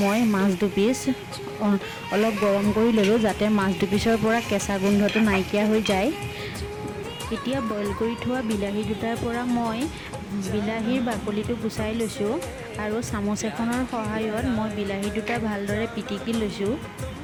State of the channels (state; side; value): identical; both; correlation 1.00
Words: মই মাছ দুপিচ অলপ গৰম কৰি ললো যাতে মাছ দুপিচৰ পৰা কেঁচা গোন্ধটো নাইকিয়া হৈ যায়। এতিয়া বইল কৰি থোৱা বিলাহী দুটাৰ পৰা মই বিলাহীৰ বাকলিটো গুচাই লৈছোঁ আৰু চামুচ এখনৰ সহায়ত মই বিলাহী দুটা ভালদৰে পিটিকি লৈছোঁ।